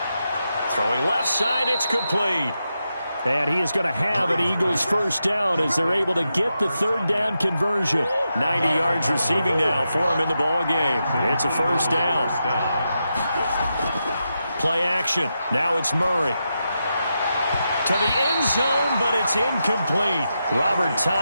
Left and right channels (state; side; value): inverted; both; correlation -0.87